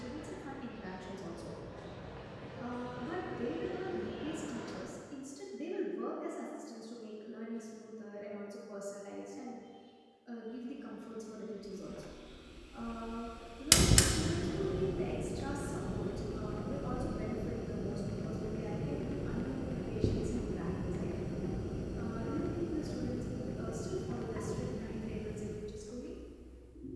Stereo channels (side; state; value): both; identical; correlation 1.00